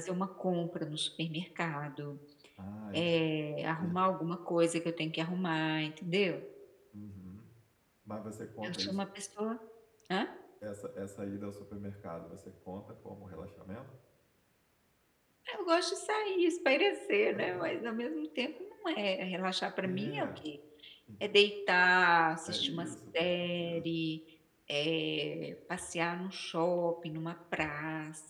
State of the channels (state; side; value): identical; both; correlation 1.00